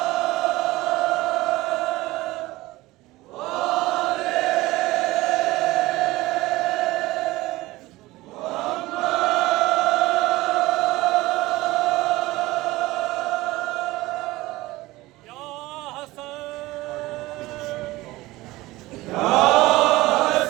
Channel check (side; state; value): left; quieter; 19.0 dB